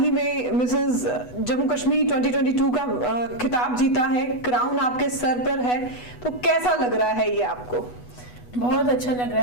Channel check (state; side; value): late; right; 8.1 ms